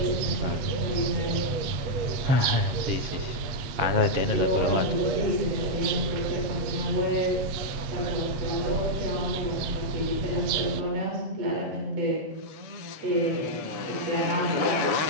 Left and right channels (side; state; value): left; late; 8.3 ms